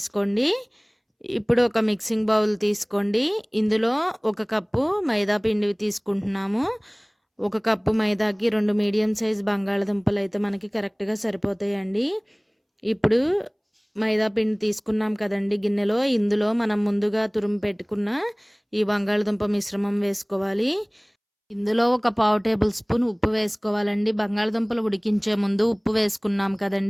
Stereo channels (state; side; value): identical; both; correlation 1.00